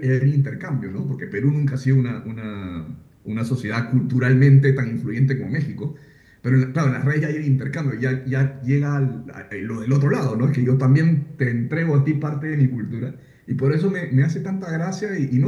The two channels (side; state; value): both; identical; correlation 1.00